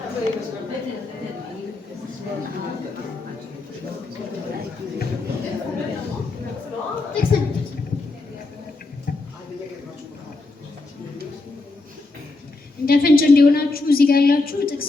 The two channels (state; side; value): quieter; right; 3.3 dB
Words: እንደ ፍንጭ እንዲሆናችሁ እዚህ ጋር ያላችሁ